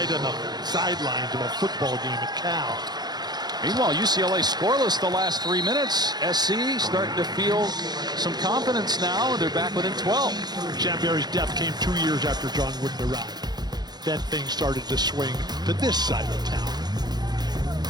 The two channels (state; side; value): late; left; 0.20 ms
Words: on the sidelines of a football game at Cal. Meanwhile, UCLA scoreless the last 3 minutes. SC starting to feel some confidence now. They're back within 12. Sam Barry's death came 2 years after John Wooden arrived. Then things started to swing to this side of town.